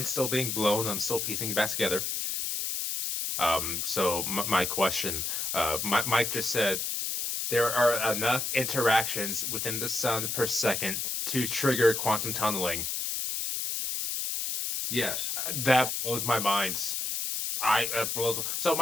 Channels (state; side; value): noise; left; hiss, 2 dB below the sound